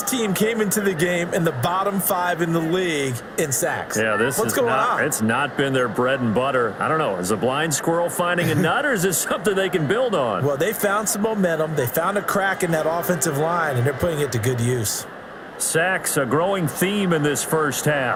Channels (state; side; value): identical; both; correlation 1.00